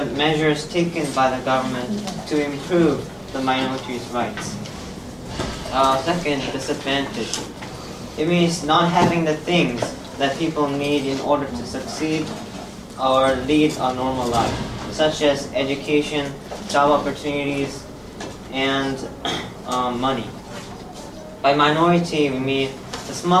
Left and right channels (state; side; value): identical; both; correlation 1.00